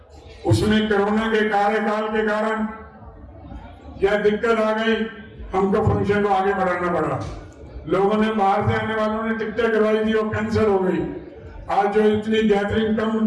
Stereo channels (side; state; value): both; identical; correlation 1.00